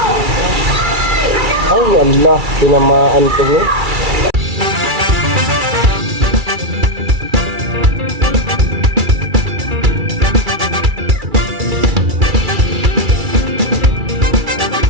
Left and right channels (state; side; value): late; left; 2.3 ms